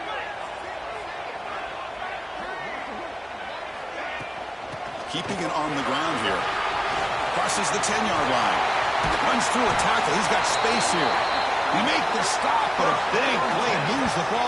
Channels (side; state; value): both; identical; correlation 1.00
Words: Keeping it on the ground here. Crosses the 10-yard line. Runs through a tackle. He's got space here. He makes the stop, but a big play moves the